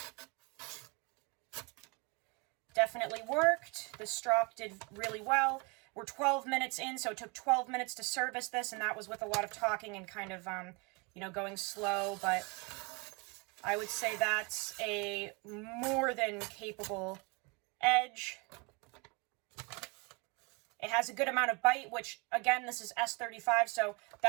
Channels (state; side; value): quieter; left; 30.1 dB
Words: definitely worked. The strop did really well. We're 12 minutes in, so it took 12 minutes to service this, and that was with a lot of talking and kind of, you know, going slow, but I would say that's a more than capable edge. It has a good amount of bite, which, again, this is S35, so